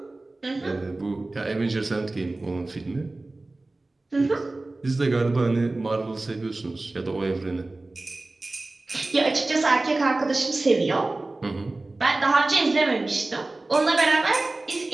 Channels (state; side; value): quieter; left; 3.0 dB